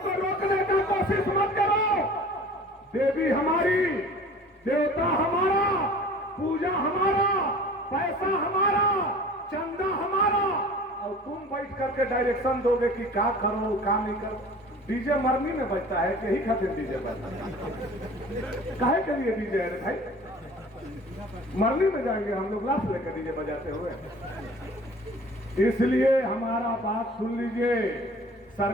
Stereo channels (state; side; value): normal; both; correlation 0.45